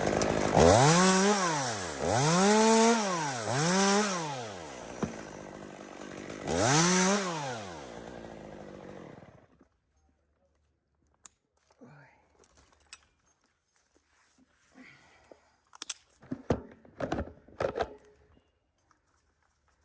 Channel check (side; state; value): both; identical; correlation 1.00